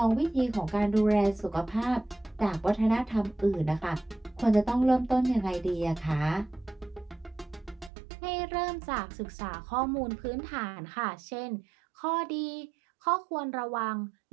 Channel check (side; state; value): left; drops out; at 7.9 s